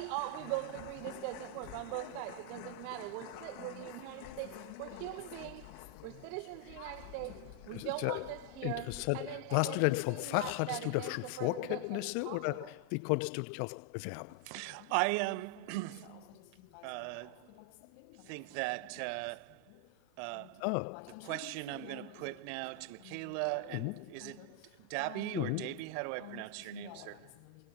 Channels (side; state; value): both; different; correlation 0.00